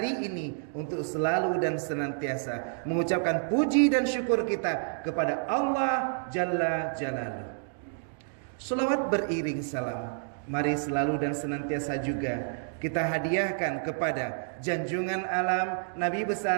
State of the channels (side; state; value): left; silent; digital silence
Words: ini untuk selalu dan senantiasa mengucapkan puji dan syukur kita kepada Allah Jalla Jalaluh. Selawat beriring salam, mari selalu dan senantiasa juga kita hadiahkan kepada junjungan alam Nabi